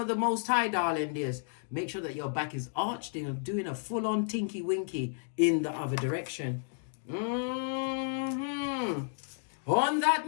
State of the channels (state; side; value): silent; right; 56 dB below the other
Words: the Most High, darling dears. Make sure that your back is arched and doing a full-on tinky winky in the other direction. On that